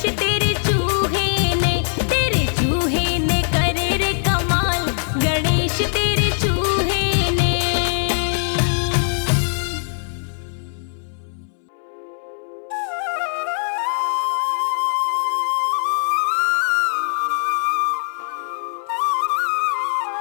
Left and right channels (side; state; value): right; silent; 62 dB below the other